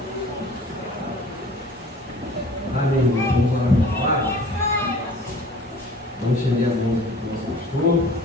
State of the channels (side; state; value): both; normal; correlation 0.47